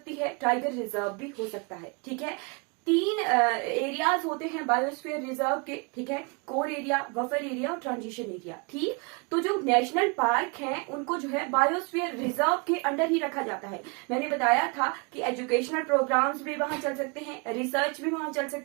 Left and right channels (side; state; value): left; quieter; 31.8 dB